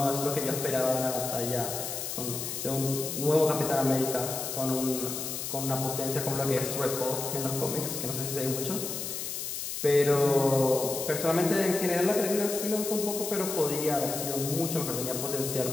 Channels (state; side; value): noise; left; hiss, 5 dB below the sound